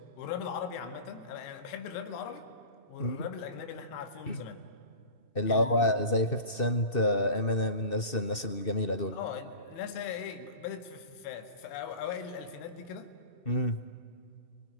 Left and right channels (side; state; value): right; late; 2.7 ms